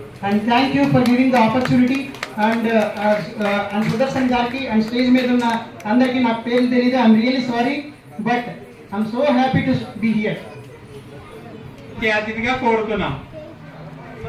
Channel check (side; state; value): both; identical; correlation 1.00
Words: and thank you for giving the opportunity. And Sudarshan గారికి అండ్ స్టేజ్ మీద ఉన్న అందరికీ నాకు పేర్లు తెలియదు, I'm really sorry. But I'm so happy to be here. అతిథిగా కోరుతున్నాం.